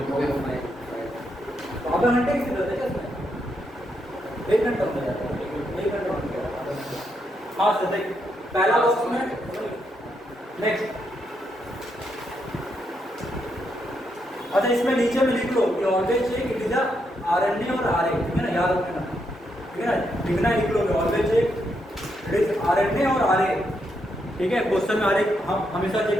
आधा घंटे की जरूरत है क्या इसमें? 1 घंटा हो जाएगा, 1 घंटा हो गया। हाँ सर देख पहला बॉक्स में नेक्स्ट। अच्छा इसमें नीचे में लिख लो कि always check it is a RNA और आरए, ठीक है ना, याद रखना, ठीक है ना, लिखना लिख लो कि always check it is RNA और आरए, ठीक है। क्वेश्चन में आरए हम हमेशा चेक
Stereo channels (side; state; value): both; normal; correlation 0.79